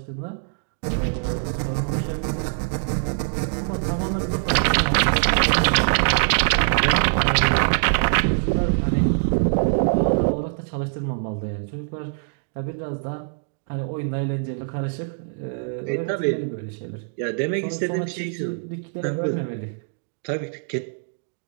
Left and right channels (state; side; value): silent; left; digital silence